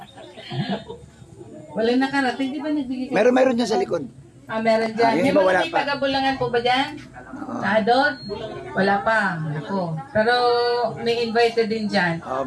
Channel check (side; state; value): both; identical; correlation 1.00